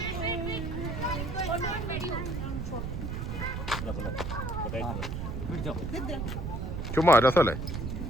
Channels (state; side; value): noise; right; rumble, 4 dB below the sound